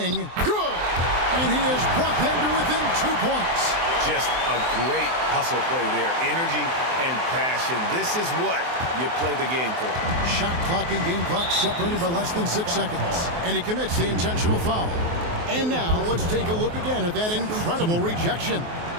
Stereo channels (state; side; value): late; left; 23 ms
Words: Good! And he has brought them to within 2 points. Just a great hustle play there. Energy and passion. This is what you play the game for. Shot clock and game clock separated by less than 6 seconds. And he commits the intentional foul. And now let's take a look again at that incredible rejection.